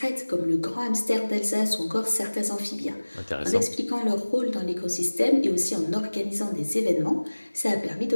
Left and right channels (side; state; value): both; inverted; correlation -1.00